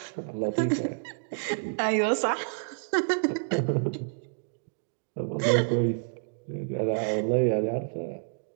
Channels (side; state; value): left; silent; digital silence